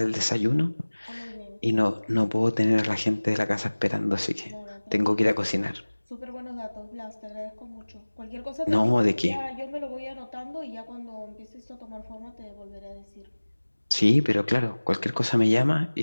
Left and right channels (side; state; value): both; inverted; correlation -1.00